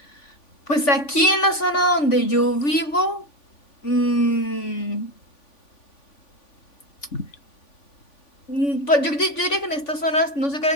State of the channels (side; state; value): right; late; 3.5 ms